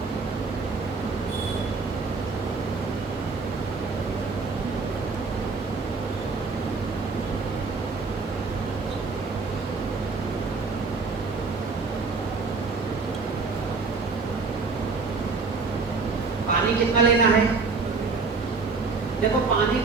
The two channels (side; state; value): left; quieter; 4.4 dB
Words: पानी कितना लेना है? देखो पानी